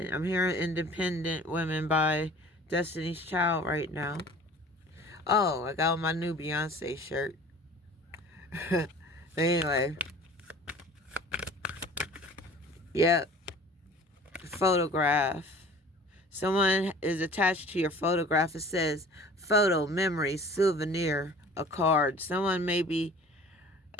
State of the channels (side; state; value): both; normal; correlation 0.46